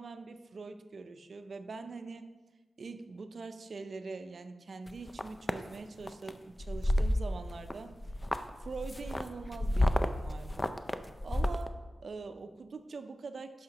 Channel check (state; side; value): normal; both; correlation 0.95